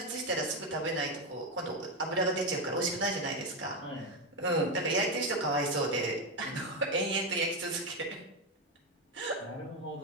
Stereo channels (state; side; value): normal; both; correlation 0.09